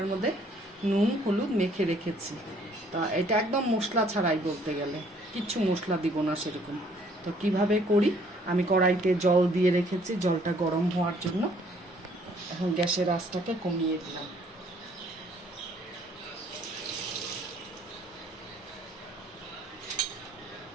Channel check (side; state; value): both; normal; correlation 0.62